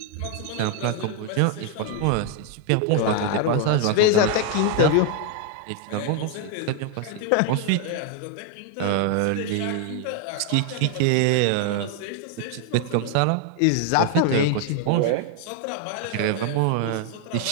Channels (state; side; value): different; both; correlation 0.00